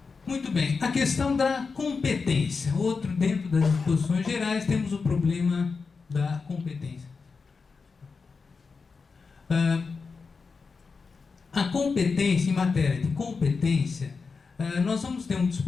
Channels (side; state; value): right; quieter; 4.8 dB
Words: Muito bem, a questão da competência. Outro, dentro das disposições gerais, temos o problema da competência. A competência, em matéria de competência, nós vamos ter um